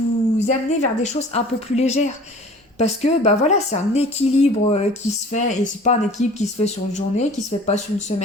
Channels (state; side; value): normal; both; correlation 0.46